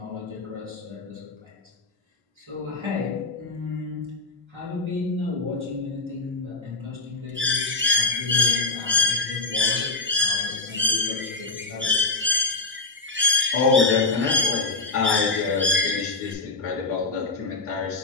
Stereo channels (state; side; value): quieter; right; 3.5 dB